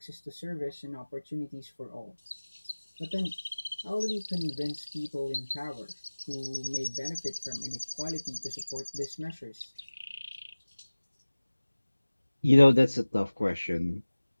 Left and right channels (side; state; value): both; inverted; correlation -1.00